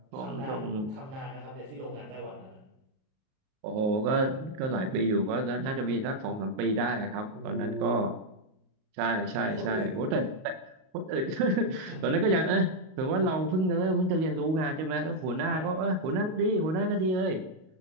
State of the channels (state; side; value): late; left; 38 ms